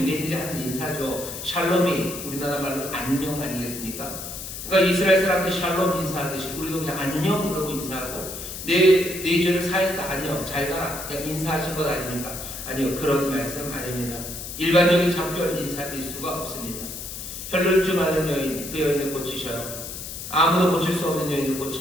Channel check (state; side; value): noise; left; hiss, 9 dB below the sound